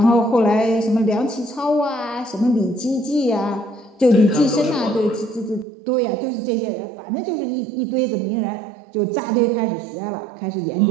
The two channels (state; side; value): drops out; left; at 5.7 s